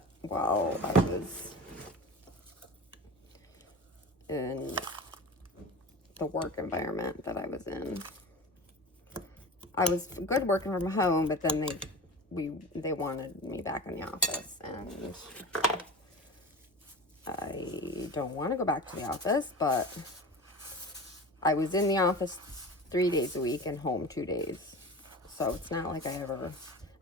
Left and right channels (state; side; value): normal; both; correlation 0.33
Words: while I was in the work environment that I was in. I was good working from home, but then they wanted me back in the office, and I don't want to go back to the office, but I was in the office 3 days a week and home 2 days. So it's not like I ever,